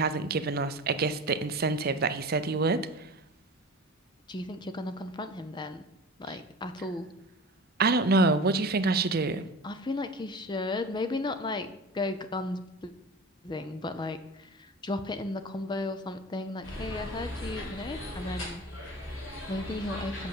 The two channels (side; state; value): both; normal; correlation 0.34